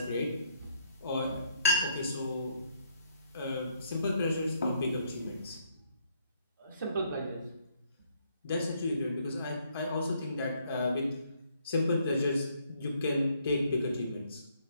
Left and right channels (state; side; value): inverted; both; correlation -0.70